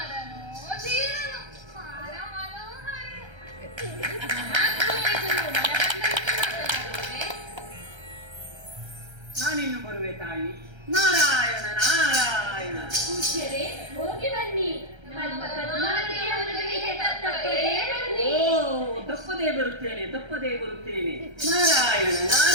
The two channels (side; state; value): left; late; 1.3 ms